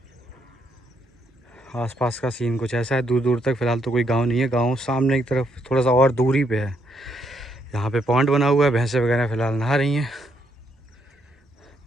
आसपास का सीन कुछ ऐसा है, दूर दूर तक फ़िलहाल तो कोई गांव नहीं है, गांव सामने की तरफ थोड़ा सा और दूरी पे है। यहाँ पे पॉन्ड बना हुआ है, भैंसें वगैरह फ़िलहाल नहा रही हैं।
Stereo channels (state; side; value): normal; both; correlation 0.74